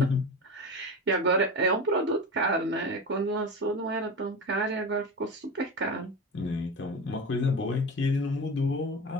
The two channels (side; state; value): both; normal; correlation 0.27